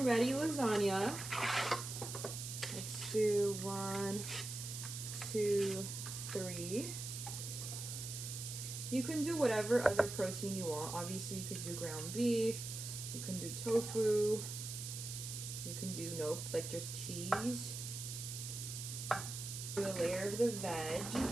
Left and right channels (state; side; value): noise; right; hiss, 7 dB below the sound